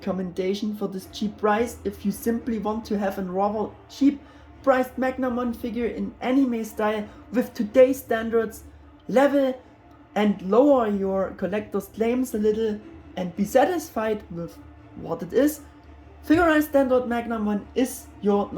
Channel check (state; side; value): identical; both; correlation 1.00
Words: for this cheap price if you simply want to have a rather cheap priced Magnamon figure in anime style with today's standards level and lower your collector's claims a little and be satisfied with what it is. Figure-riseStandard Magnamon is your